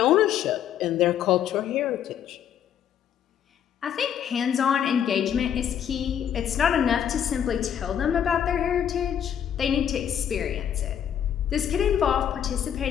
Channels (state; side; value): quieter; right; 9.3 dB